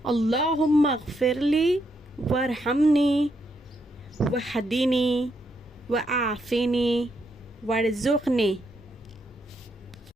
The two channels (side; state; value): both; normal; correlation 0.78